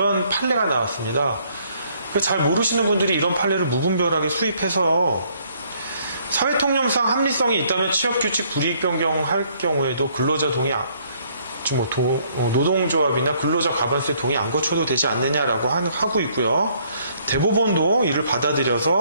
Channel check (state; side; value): inverted; both; correlation -0.65